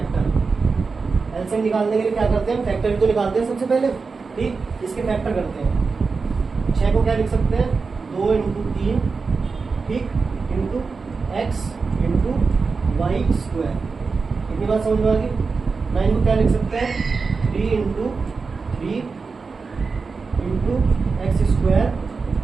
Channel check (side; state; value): left; quieter; 4.6 dB